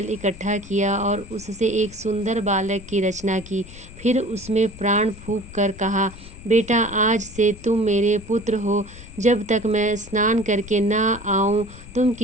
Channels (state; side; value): noise; left; rumble, 17 dB below the sound